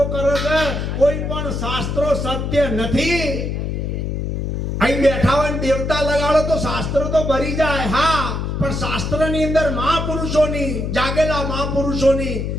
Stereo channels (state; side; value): noise; left; hum, 2 dB below the sound